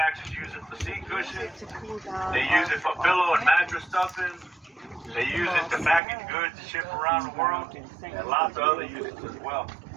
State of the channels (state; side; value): drops out; left; at 6.0 s